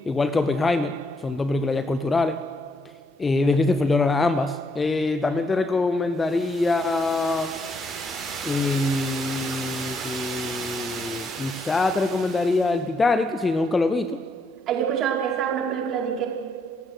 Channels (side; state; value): both; normal; correlation 0.74